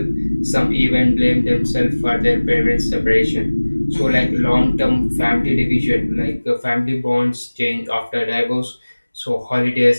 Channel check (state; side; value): inverted; both; correlation -1.00